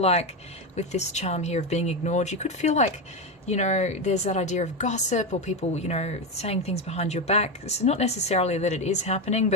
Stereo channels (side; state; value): both; normal; correlation 0.14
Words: with this charm here of being ignored, you could feel like, there's that idea of gossip or people, saying things behind your back. It's not necessarily that it is happening,